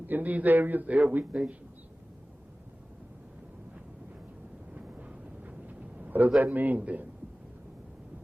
these areas, they're weak nations. What does that mean then?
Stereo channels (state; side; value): normal; both; correlation 0.97